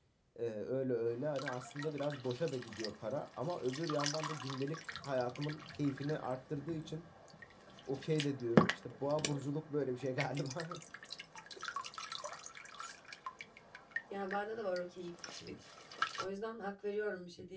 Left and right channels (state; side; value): identical; both; correlation 1.00